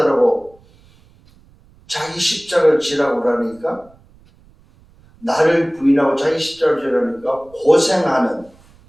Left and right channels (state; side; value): noise; right; rumble, 29 dB below the sound